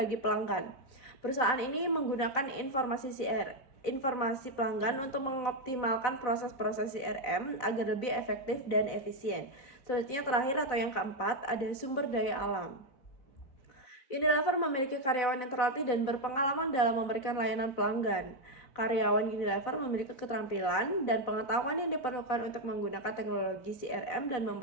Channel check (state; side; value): late; right; 4.0 ms